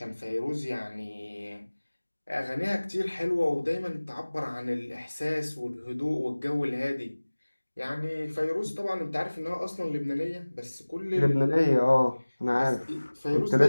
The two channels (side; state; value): both; inverted; correlation -1.00